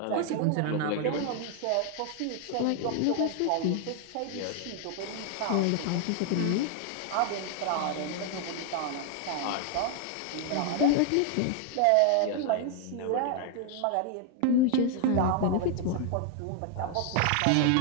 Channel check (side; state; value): both; different; correlation 0.00